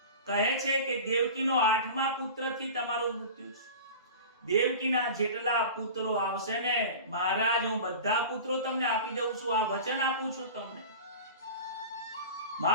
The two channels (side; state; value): both; inverted; correlation -0.35